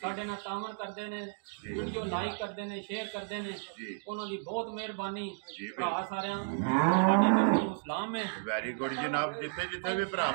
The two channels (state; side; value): silent; left; digital silence